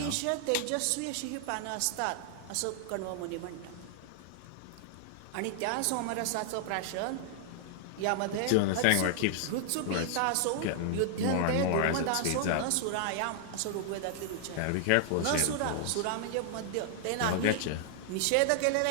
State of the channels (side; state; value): both; different; correlation 0.00